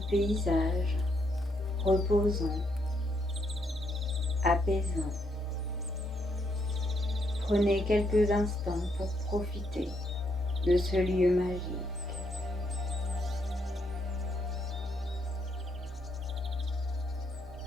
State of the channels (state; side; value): normal; both; correlation 0.75